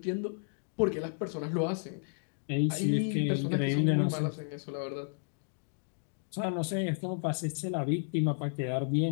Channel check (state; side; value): silent; right; digital silence